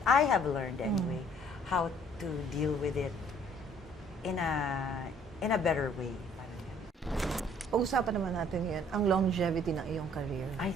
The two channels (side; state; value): both; normal; correlation 0.58